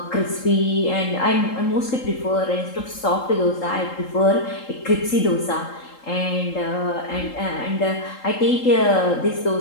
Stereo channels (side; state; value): right; late; 3.8 ms